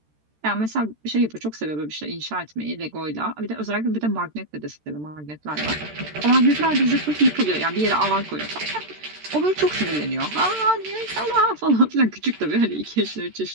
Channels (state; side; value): late; left; 13 ms